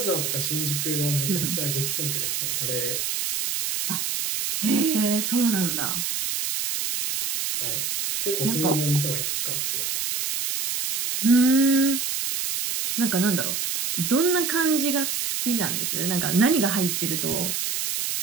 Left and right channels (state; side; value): noise; right; hiss, 1 dB below the sound